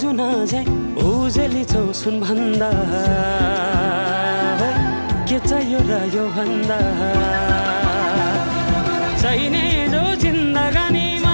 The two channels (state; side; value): inverted; both; correlation -1.00